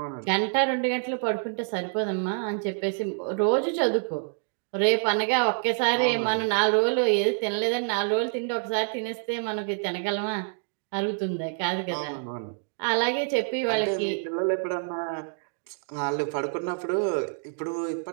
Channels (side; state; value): left; silent; 60 dB below the other